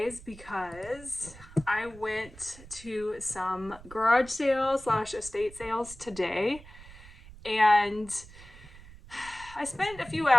because I went to some garage sales / estate sales today, and I spent a few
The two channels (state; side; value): noise; right; rumble, 19 dB below the sound